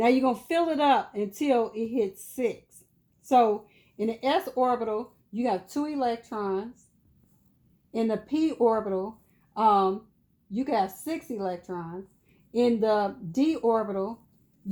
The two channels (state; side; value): identical; both; correlation 1.00